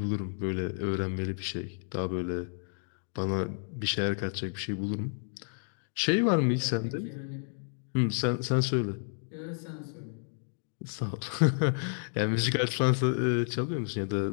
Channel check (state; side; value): silent; right; digital silence